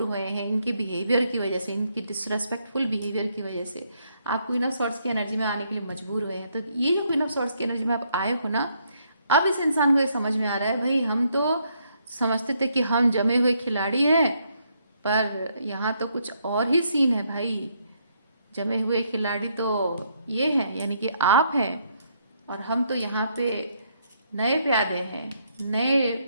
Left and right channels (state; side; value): inverted; both; correlation -0.73